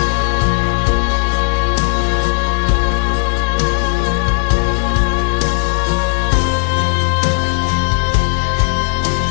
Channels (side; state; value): right; silent; digital silence